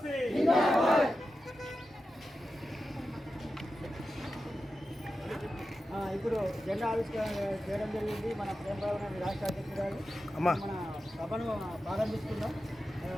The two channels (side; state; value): both; normal; correlation 0.91